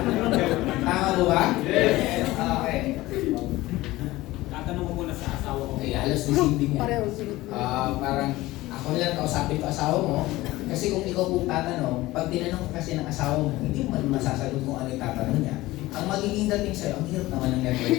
Tama mo ba? Yes. Okay. Tatanong ko muna sa asawa ko. Okay, halos deceiving yan. Parang ako lang kausapin ko asawa mo, kasi kung ikaw po tatanong, pag tinanong ka kasi ng asawa mo, hindi mo masasagot kung ano yung tatanong niya. Ang magiging dating sa'yo, ang hirap naman ng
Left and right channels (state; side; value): quieter; right; 18.2 dB